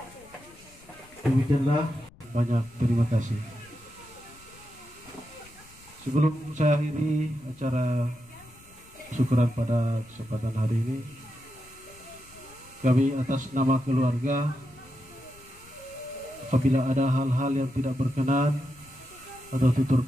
Demikianlah, banyak terima kasih. Sebelum saya akhiri acara syukuran pada kesempatan hari ini, kami atas nama keluarga, apabila ada hal-hal yang tidak berkenan atau tutur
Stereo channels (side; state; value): left; noise; rumble, 25 dB below the sound